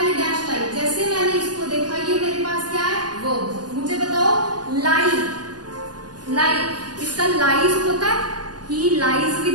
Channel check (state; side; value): late; left; 0.69 ms